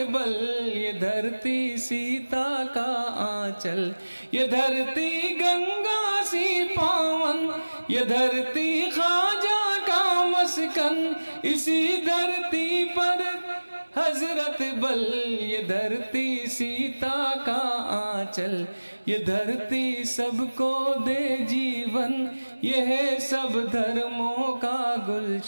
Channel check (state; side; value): inverted; both; correlation -1.00